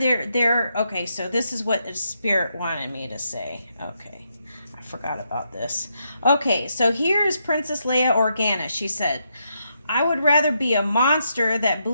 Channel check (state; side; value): inverted; both; correlation -0.80